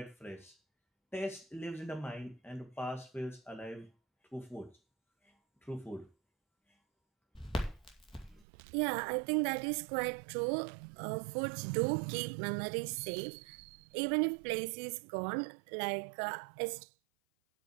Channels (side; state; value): left; drops out; at 8.5 s